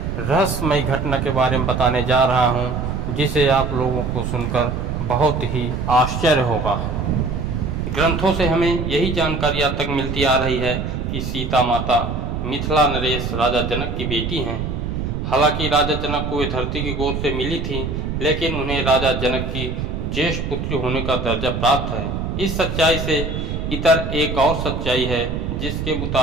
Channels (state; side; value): noise; right; rumble, 3 dB below the sound